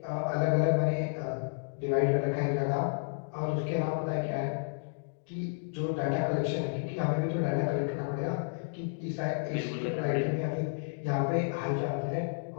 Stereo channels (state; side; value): silent; right; digital silence